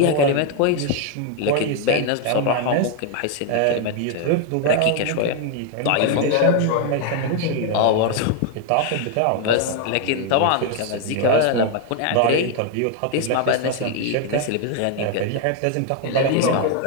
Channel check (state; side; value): different; both; correlation 0.01